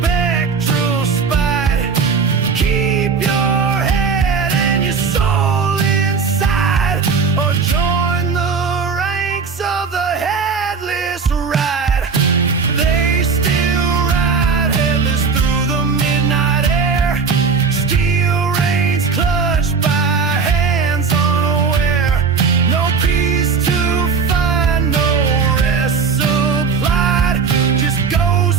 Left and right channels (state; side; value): quieter; left; 5.4 dB